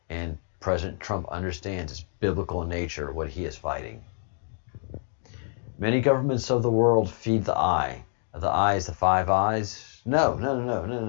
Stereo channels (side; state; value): right; silent; 60 dB below the other